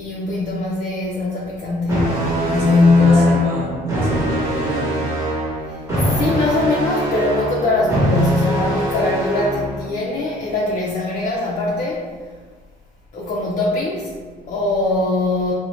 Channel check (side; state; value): both; normal; correlation 0.60